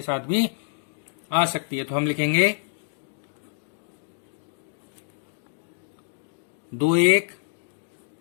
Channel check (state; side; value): silent; right; digital silence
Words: साथ भी आ सकती है। तो हम लिखेंगे 2, 1,